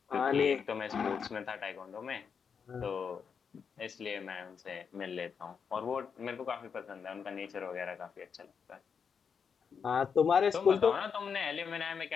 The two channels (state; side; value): quieter; right; 6.4 dB